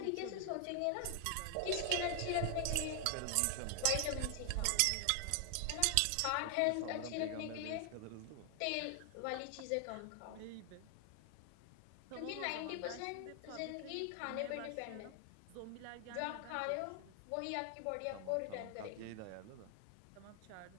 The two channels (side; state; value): both; different; correlation 0.00